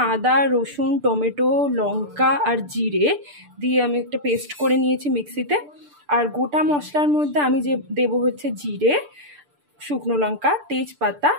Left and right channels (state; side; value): late; left; 6.8 ms